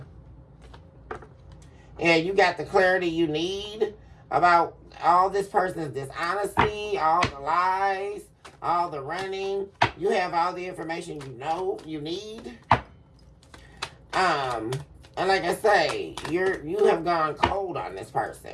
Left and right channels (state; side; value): identical; both; correlation 1.00